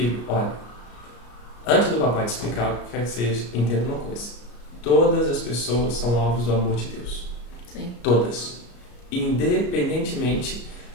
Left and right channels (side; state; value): right; late; 34 ms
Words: olha, antes do papai te explicar o que quer que seja, entenda uma coisa. todas as pessoas são alvos do amor de Deus. Sim. Todas. Independentemente